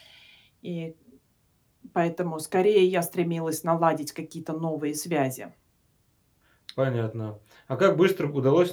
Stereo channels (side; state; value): both; identical; correlation 1.00